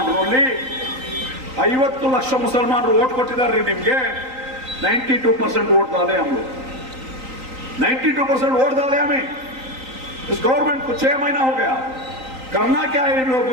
50 ಲಕ್ಷ ಮುಸಲ್ಮಾನರು ವೋಟ್ ಕೊಟ್ಟಿದ್ದಾರೆ ನಿಮ್ಗೆ। 92% वोट डाले हम लोग, 92% वोट डाले हमें। इस गवर्नमेंट को 6 महीना हो गया। करना क्या है इन लोग?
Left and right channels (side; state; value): left; late; 3.9 ms